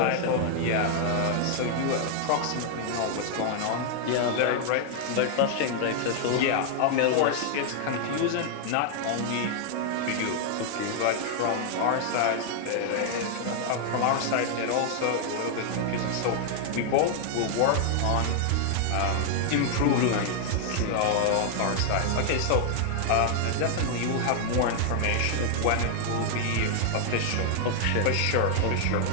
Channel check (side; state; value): both; different; correlation 0.00